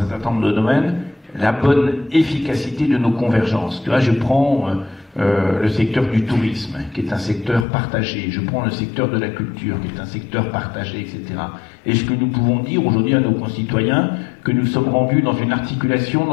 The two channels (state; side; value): drops out; right; at 7.7 s